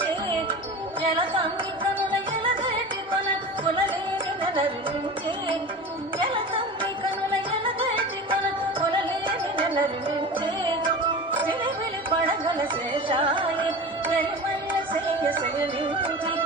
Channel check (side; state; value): both; normal; correlation 0.32